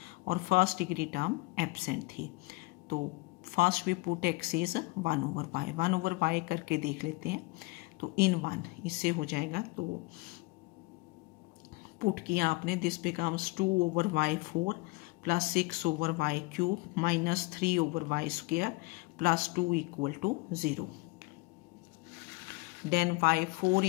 और फर्स्ट डिग्री टर्म एब्सेंट थी। तो first we put x is 1/y, 1/y करके देख लेते हैं। तो इन 1 इससे हो जाएगा। तो पुट किया आपने, this becomes 2/y4 plus 6/y³ minus 3/y² plus 2 equal to 0। Then y4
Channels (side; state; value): right; quieter; 24.0 dB